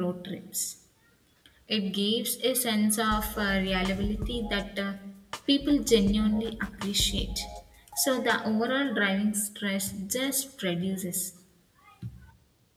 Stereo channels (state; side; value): identical; both; correlation 1.00